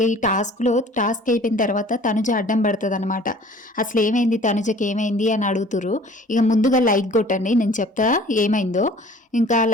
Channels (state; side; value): normal; both; correlation 0.49